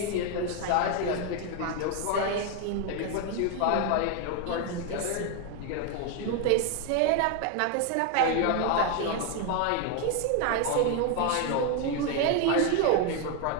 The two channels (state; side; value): different; both; correlation 0.01